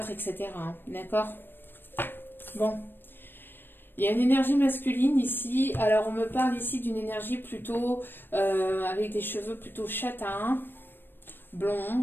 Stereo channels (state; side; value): late; right; 0.097 ms